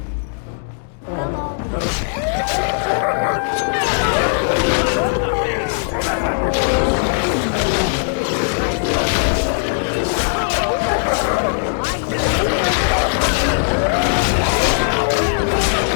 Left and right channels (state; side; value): silent; right; digital silence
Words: Well, all right.